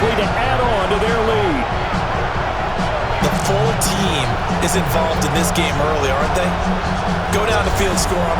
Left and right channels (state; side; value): identical; both; correlation 1.00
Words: to add on to their lead. The full team is involved in this game early, aren't they? Go down the field, score